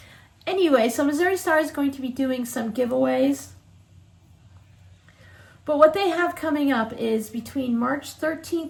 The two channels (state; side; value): identical; both; correlation 1.00